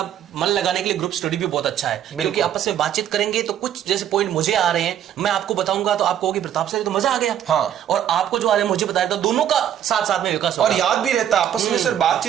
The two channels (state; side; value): quieter; left; 10.3 dB